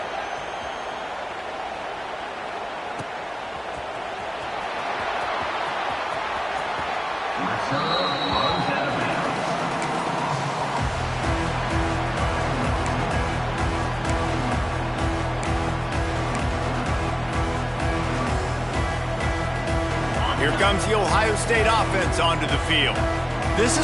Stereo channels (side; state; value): both; identical; correlation 1.00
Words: Here comes the Ohio State offense onto the field. This